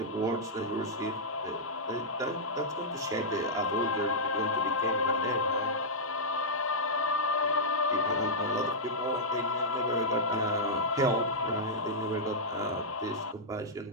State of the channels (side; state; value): both; normal; correlation -0.09